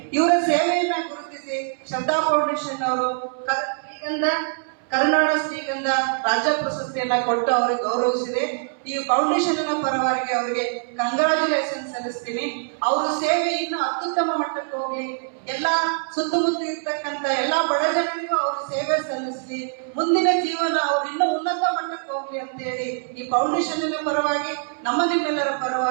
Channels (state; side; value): silent; left; 63 dB below the other